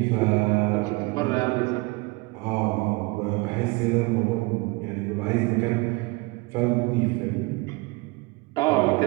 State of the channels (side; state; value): left; quieter; 24.8 dB